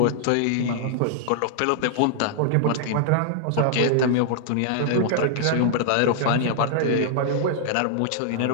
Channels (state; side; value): different; both; correlation -0.01